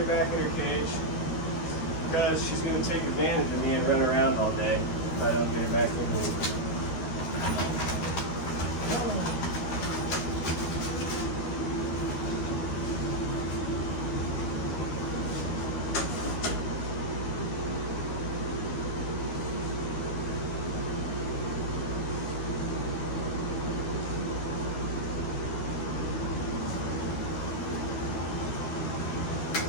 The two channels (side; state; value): right; late; 13 ms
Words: back in her cage. Because she's going to take advantage of me and run around all day if I don't get her back in here.